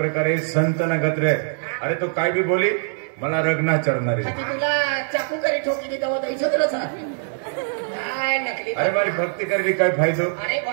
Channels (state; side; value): silent; left; digital silence